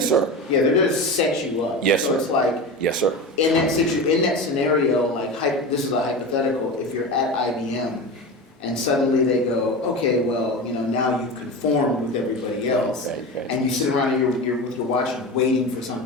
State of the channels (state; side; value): normal; both; correlation 0.26